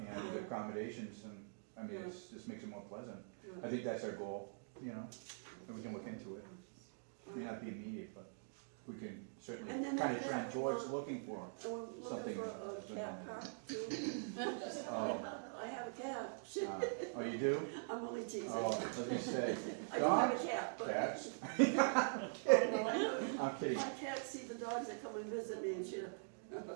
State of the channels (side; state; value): left; silent; digital silence